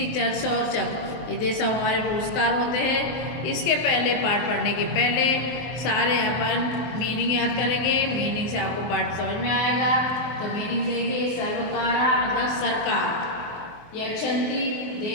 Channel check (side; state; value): right; late; 23 ms